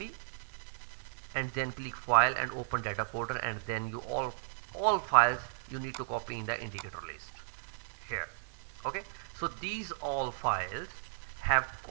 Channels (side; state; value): left; silent; digital silence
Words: and then click file and open data folder, and then you all files you need to copy in the indicator list here. Okay, so these all files have